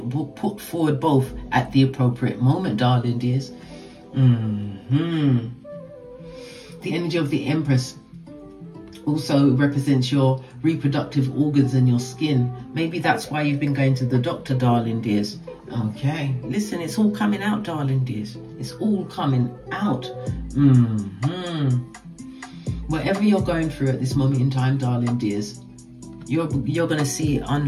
Put forward both at the appropriate moment, darling dears. The energy of the Empress also represents your reproductive organs and your skin. Maybe that's why you've been going to the doctor, darling dears. Okay, listen, it's all coming out, darling dears. It's all coming out. Whatever you're going through at this moment in time, darling dears, you're going to see it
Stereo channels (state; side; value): identical; both; correlation 1.00